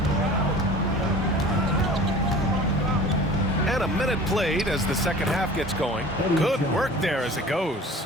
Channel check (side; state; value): both; normal; correlation 0.42